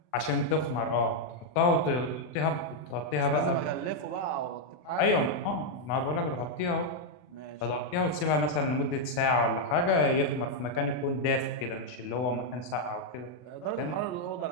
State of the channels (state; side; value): late; right; 40 ms